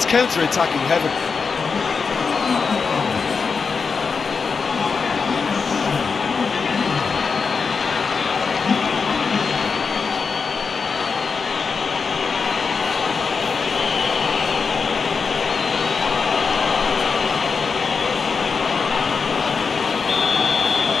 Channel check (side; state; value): right; quieter; 5.2 dB